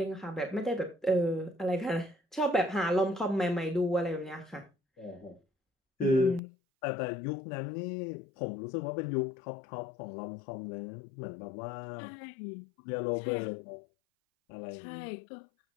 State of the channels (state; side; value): drops out; right; at 6.4 s